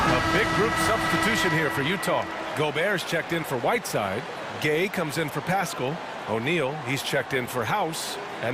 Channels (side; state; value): both; identical; correlation 1.00